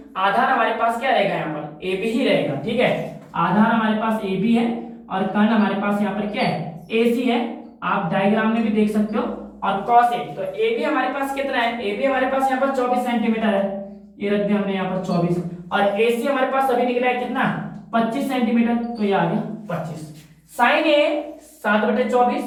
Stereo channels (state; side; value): identical; both; correlation 1.00